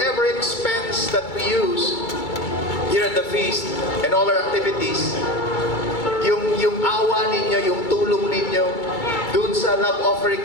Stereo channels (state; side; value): late; right; 2.3 ms